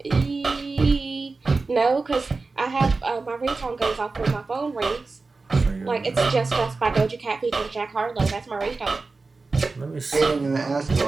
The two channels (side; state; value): left; quieter; 3.9 dB